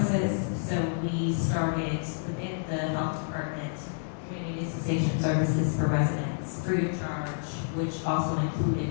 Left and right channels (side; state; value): right; silent; 59 dB below the other